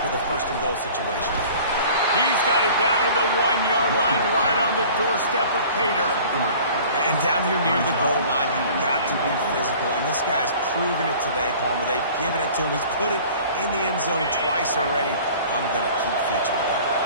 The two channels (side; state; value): both; inverted; correlation -0.46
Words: with a 1st and goal situation. He's got it down to the 1-yard line, right on the doorstep of Pater. And down here near the goal line, you've got to be physical. And this guy's proven it today, Palmer. They've given it to him. He's put it in the end zone twice already. I'm going to keep featuring that.